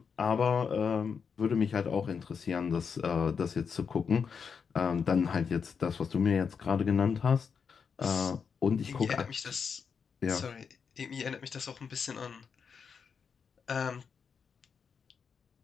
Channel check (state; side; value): quieter; right; 6.2 dB